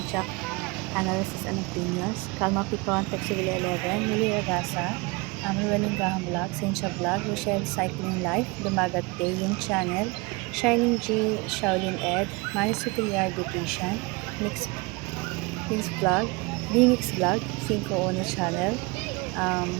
Jack Analysis and Opinions, Calma Picon, Texivilla 11, Mili Ragasa, Rueling Gahang Vlog, Cynthia Vlog, Rochelle Cycling Life, Dumagat Day, yung channel, Shining G, Shaolin Ed, Manny Superior Beautician, Mix Vlog, Bimix Vlog, 5 Channel,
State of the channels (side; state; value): left; quieter; 26.2 dB